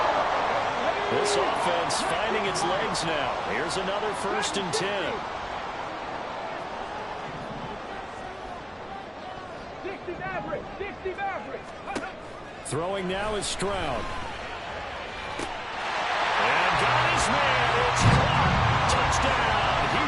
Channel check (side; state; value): both; identical; correlation 1.00